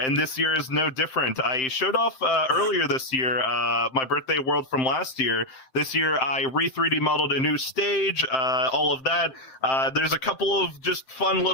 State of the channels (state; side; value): late; right; 7.6 ms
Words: this year is no different. I showed off earlier this year my birthday world from last year. This year, I re-3D modeled a new stage, all of that. There's a couple of just fun